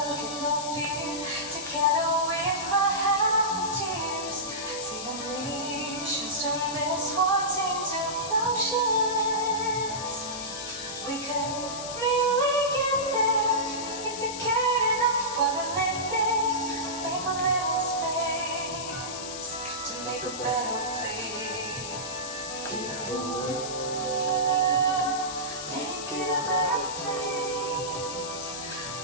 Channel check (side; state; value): left; noise; hiss, 8 dB below the sound